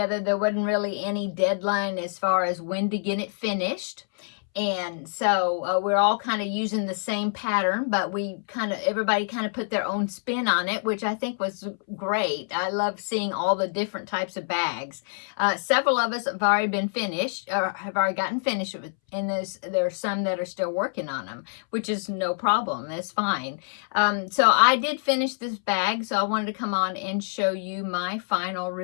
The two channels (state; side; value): silent; right; 61 dB below the other